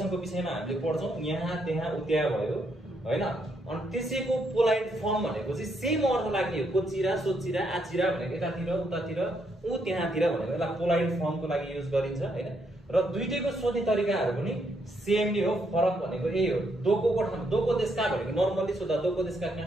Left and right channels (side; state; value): both; normal; correlation 0.75